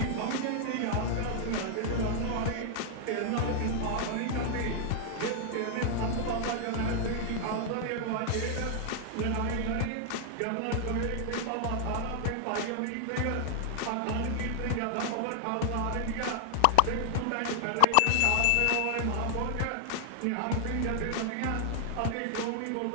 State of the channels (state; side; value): different; both; correlation 0.00